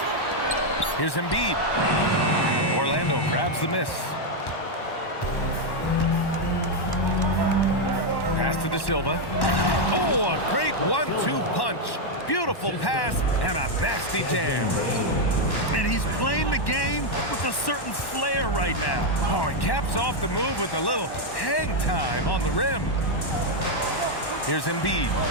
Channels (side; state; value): right; late; 1.1 ms